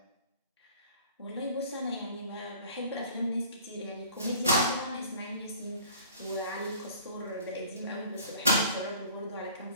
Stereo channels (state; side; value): inverted; both; correlation -0.49